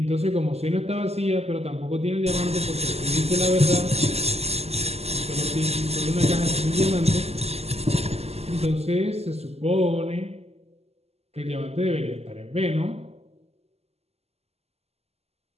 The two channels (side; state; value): left; late; 0.30 ms